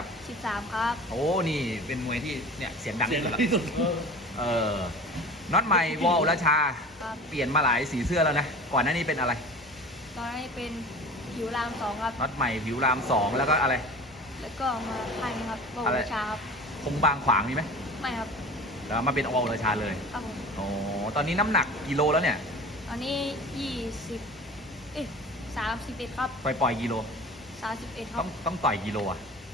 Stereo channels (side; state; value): both; normal; correlation 0.38